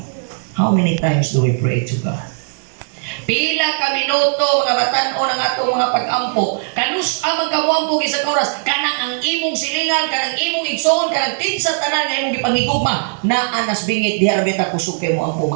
How many times do we pray to God? Pila ka minuto mga batan-o ng atong mga pag-ampo. Kanus amang kamuampo sa oras, kanang ang imong silingan, kanang imong igsoon, kanang tinsa tanan nga imong gipangigugma na anas bingit diha ra beta kusog kay mo ampo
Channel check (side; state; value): left; silent; 59 dB below the other